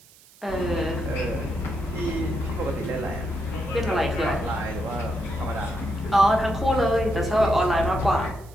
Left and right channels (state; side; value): noise; right; hiss, 26 dB below the sound